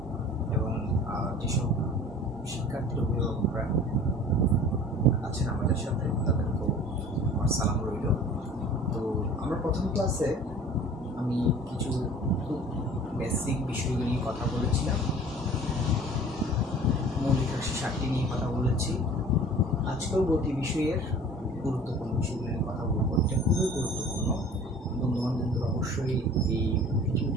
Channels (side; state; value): both; normal; correlation 0.45